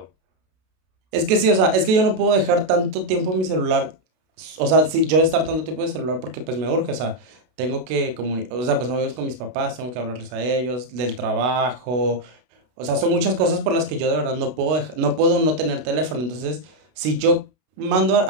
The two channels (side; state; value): left; late; 32 ms